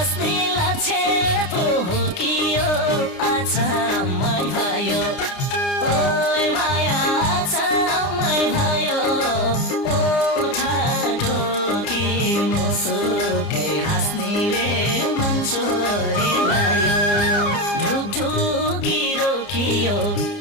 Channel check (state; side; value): late; right; 29 ms